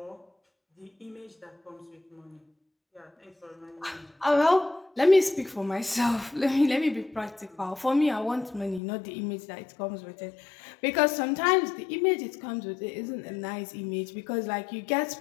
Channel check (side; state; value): right; drops out; at 8.8 s